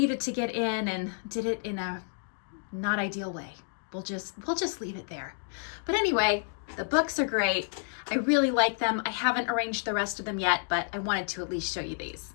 to get in and did it in a not ideal way. We'll just leave it there. But anyway, the books are great. I really like them. I haven't arranged the rest of them yet, but I wanted to at least show you these.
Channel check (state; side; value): silent; right; 58 dB below the other